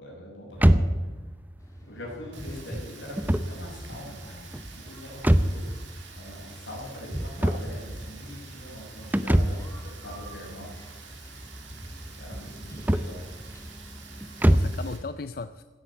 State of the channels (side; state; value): both; normal; correlation 0.94